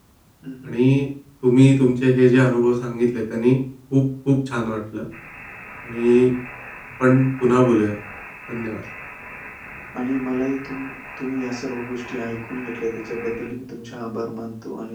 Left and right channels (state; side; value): identical; both; correlation 1.00